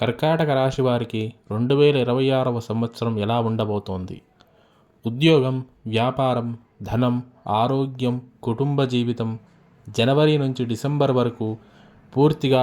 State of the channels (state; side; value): identical; both; correlation 1.00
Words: రాశి వారికి 2026వ సంవత్సరం ఎలా ఉండబోతోంది? ఉద్యోగం, వ్యాపారం, ధనం, ఆరోగ్యం, కుటుంబ జీవితం జనవరి నుంచి డిసెంబర్ వరకు